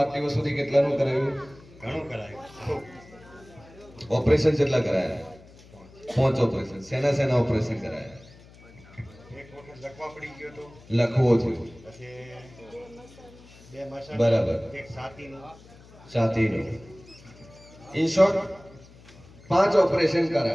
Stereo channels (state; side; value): noise; left; hum, 23 dB below the sound